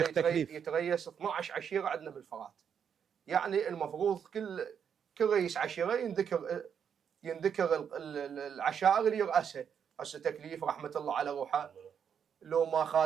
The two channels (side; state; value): left; quieter; 7.7 dB